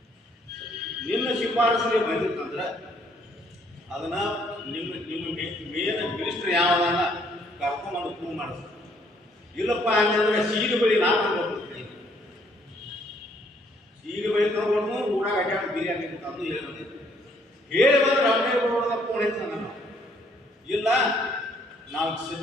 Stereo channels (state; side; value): normal; both; correlation 0.66